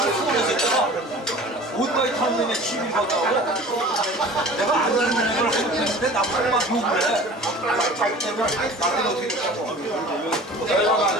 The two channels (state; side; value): normal; both; correlation 0.42